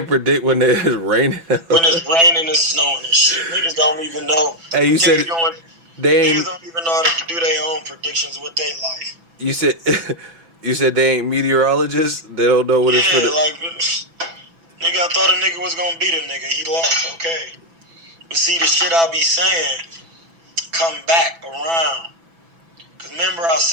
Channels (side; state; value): left; late; 6.0 ms